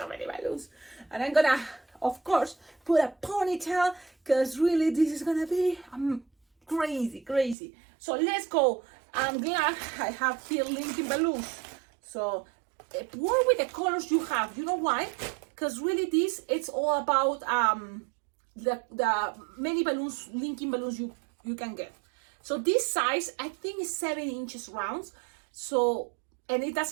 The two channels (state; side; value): drops out; left; at 7.6 s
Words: many balloons. And I'm gonna, of course, put a ponytail, because really this is gonna be crazy, crazy. So let's go. I'm glad I have here linking balloons. So work with the colors you have. You know why? Because really this, it's all about the many balloons, linking balloons you can get. So this size, I think, is 7 inches rounds. So, and it